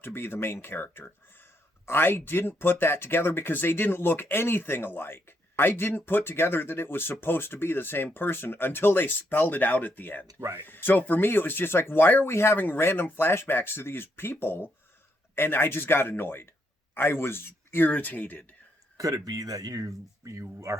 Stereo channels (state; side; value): normal; both; correlation 0.77